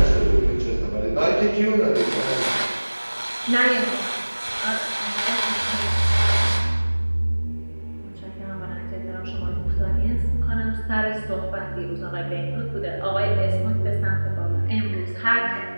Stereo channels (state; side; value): inverted; both; correlation -1.00